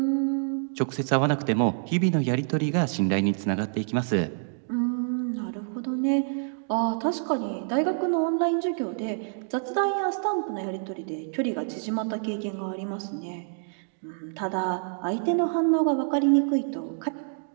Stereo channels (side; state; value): left; silent; digital silence